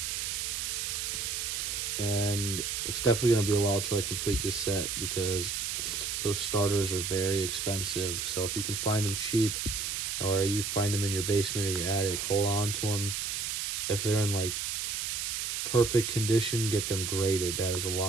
And it's definitely going to be a while till I complete this set, because those starters are very expensive. So if you can find them cheap, or you find them in your basement or your attic, hold on to them. If they're in like perfect condition, get them graded. That is a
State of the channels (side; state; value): right; noise; hiss, 2 dB below the sound